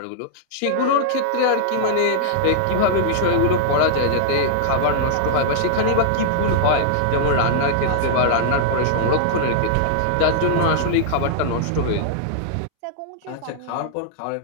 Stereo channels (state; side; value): different; both; correlation -0.01